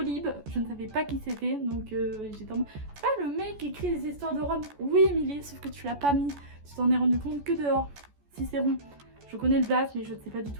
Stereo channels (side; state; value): left; late; 14 ms